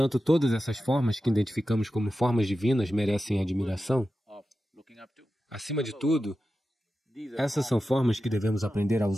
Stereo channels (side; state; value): both; normal; correlation 0.92